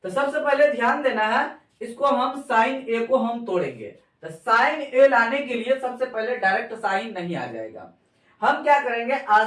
तो सबसे पहले ध्यान देना है, इसको हम साइन ए को हम तोड़ेंगे। तो साइन ए लाने के लिए सबसे पहले डायरेक्ट साइन नहीं आ जाएगा। हम क्या करेंगे,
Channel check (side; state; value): both; identical; correlation 1.00